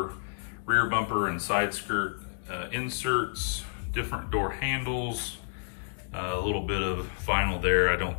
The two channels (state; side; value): silent; right; digital silence